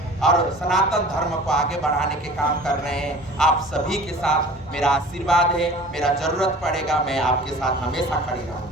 और सनातन धर्म को आगे बढ़ाने के काम कर रहे हैं। आप सभी के साथ मेरा आशीर्वाद है, मेरा जरूरत पड़ेगा मैं आपके साथ हमेशा खड़ी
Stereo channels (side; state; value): both; normal; correlation 0.43